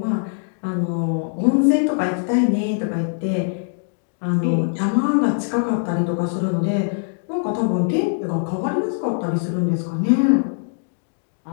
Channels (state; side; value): silent; right; digital silence